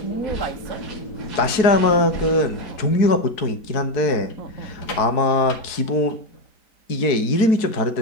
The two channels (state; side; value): late; right; 4.6 ms